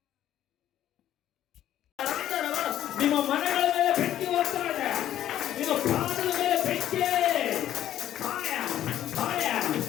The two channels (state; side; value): quieter; right; 11.8 dB